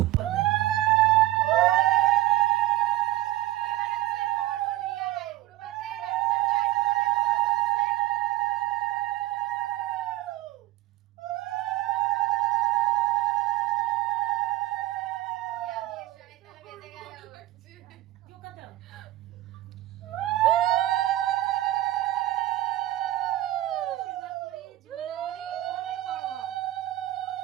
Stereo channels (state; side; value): quieter; left; 15.5 dB